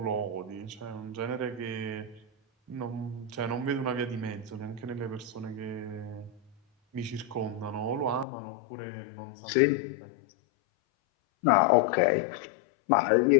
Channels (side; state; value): right; drops out; at 8.2 s